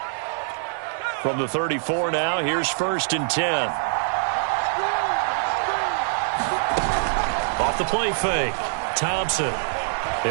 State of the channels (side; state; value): left; silent; digital silence